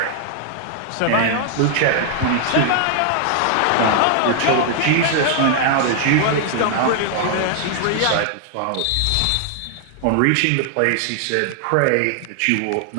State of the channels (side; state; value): both; different; correlation 0.00